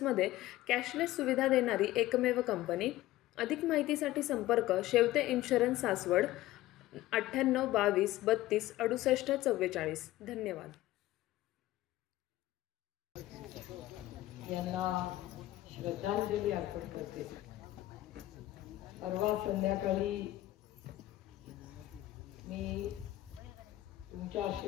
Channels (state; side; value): quieter; right; 15.9 dB